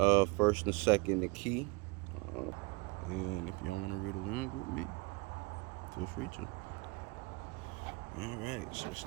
first and second Achee. And if y'all want to read along with me, feel free to. All right. So it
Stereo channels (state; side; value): quieter; left; 26.4 dB